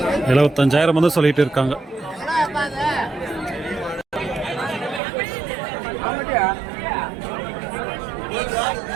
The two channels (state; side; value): drops out; left; at 5.0 s